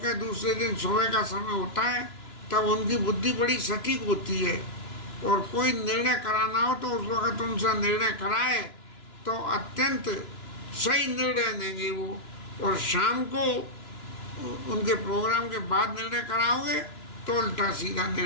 दूसरे दिन सुबह का समय होता है तब उनकी बुद्धि बड़ी सटीक होती है, और कोई निर्णय कराना हो तो उस वक्त उनसे निर्णय कराए तो अत्यंत सही निर्णय देंगे वो, और शाम को उनके प्रोग्राम के बाद निर्णय कराओगे तो उल्टा सीधा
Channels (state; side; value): late; right; 2.9 ms